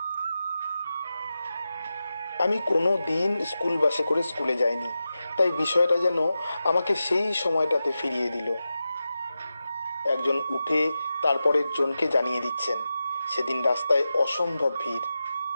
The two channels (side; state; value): both; inverted; correlation -0.92